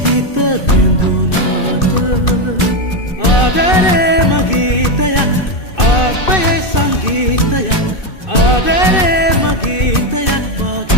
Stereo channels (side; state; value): right; late; 2.6 ms